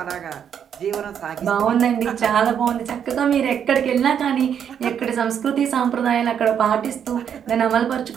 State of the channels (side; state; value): left; quieter; 8.4 dB